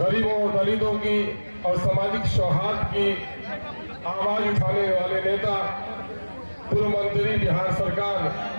और दलितों की और सामाजिक सौहार्द की आवाज उठाने वाले नेता, पूर्व मंत्री बिहार सरकार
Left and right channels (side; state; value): both; inverted; correlation -1.00